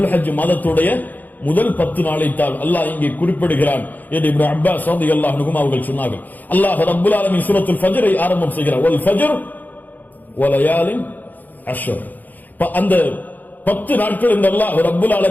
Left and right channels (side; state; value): right; late; 0.083 ms